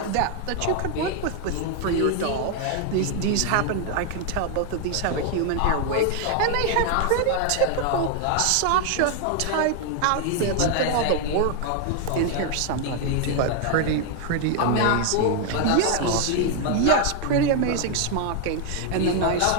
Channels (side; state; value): both; different; correlation 0.01